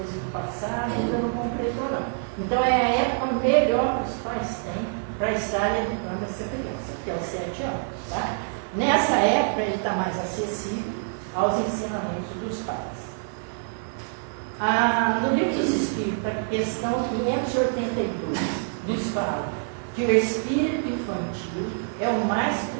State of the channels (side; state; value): left; silent; 61 dB below the other